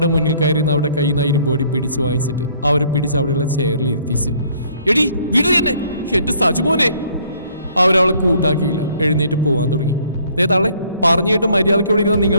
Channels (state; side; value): inverted; both; correlation -0.61